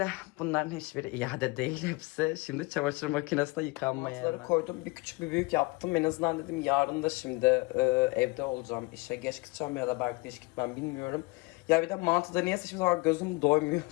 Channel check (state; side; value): quieter; right; 25.7 dB